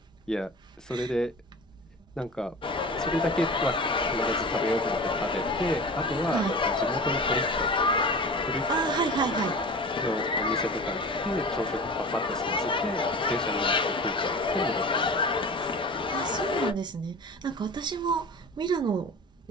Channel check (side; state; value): both; normal; correlation 0.35